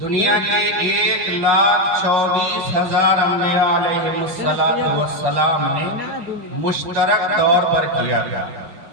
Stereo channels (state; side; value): late; left; 5.7 ms